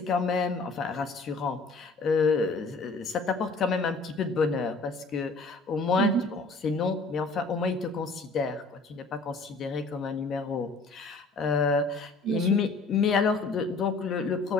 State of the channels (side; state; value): right; quieter; 3.6 dB